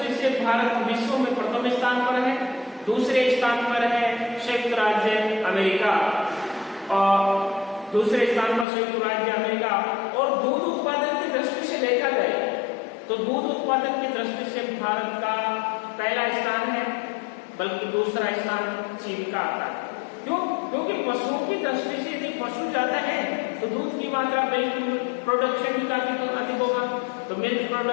से भारत विश्व में प्रथम स्थान पर है। दूसरे स्थान पर है संयुक्त राज्य अमेरिका, और दूसरे स्थान पर संयुक्त राज्य अमेरिका। और दूध उत्पादन की दृष्टि से देखा जाए तो दूध उत्पादन की दृष्टि से भारत का पहला स्थान है, बल्कि दूसरा स्थान चीन का आता है। क्यों? क्योंकि पशुओं की दृष्टि से यदि पशु ज्यादा है तो दूध की मात्रा, मिल्क प्रोडक्शन भी काफी अधिक होगा। तो मिल्क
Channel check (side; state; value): right; drops out; at 8.7 s